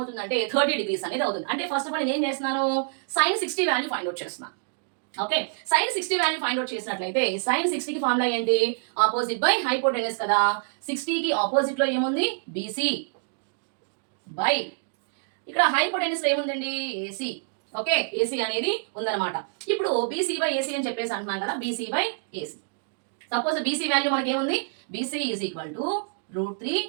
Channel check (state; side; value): silent; left; digital silence